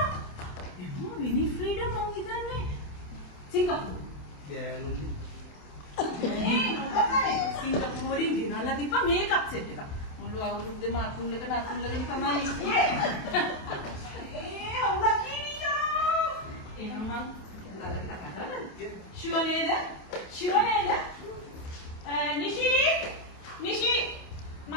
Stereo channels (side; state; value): right; late; 28 ms